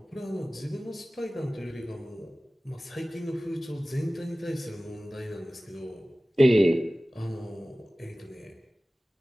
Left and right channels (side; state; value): both; normal; correlation 0.97